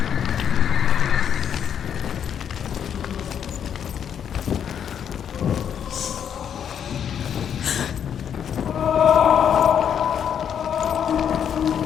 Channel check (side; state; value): right; quieter; 8.5 dB